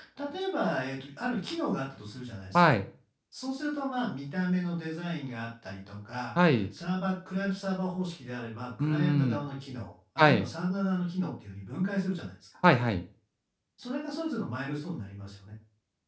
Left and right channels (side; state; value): both; identical; correlation 1.00